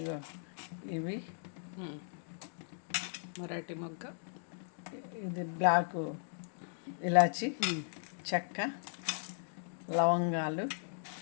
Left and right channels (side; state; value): right; silent; digital silence